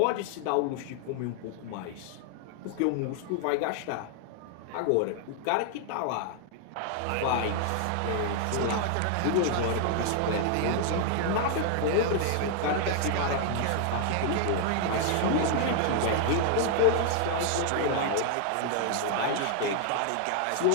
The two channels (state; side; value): different; both; correlation 0.00